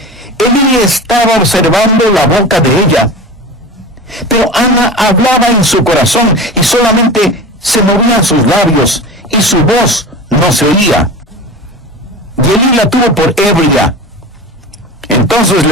Elí estaba observando la boca de ella, pero Ana hablaba en su corazón y solamente se movían sus labios y su voz no se oía. Y Elí la tuvo por ebria. Entonces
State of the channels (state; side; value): normal; both; correlation 0.31